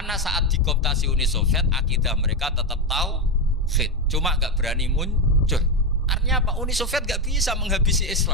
saat dikooptasi Uni Soviet, akidah mereka tetap tauhid, cuma gak berani muncul. Artinya apa? Uni Soviet gak bisa menghabisi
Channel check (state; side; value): normal; both; correlation 0.09